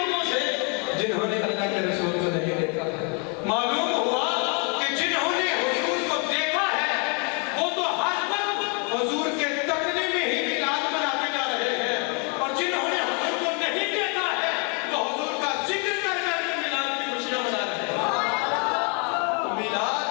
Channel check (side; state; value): right; quieter; 35.5 dB